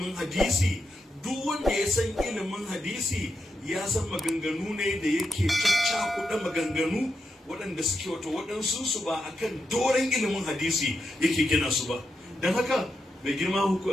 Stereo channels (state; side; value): normal; both; correlation 0.86